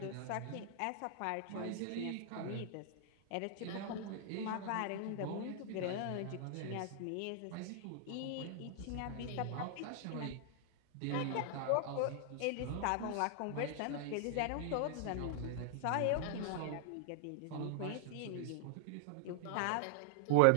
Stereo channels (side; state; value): both; different; correlation -0.01